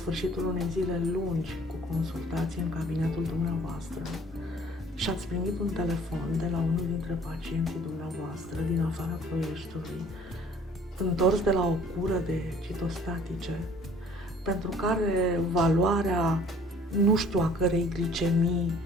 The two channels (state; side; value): normal; both; correlation 0.54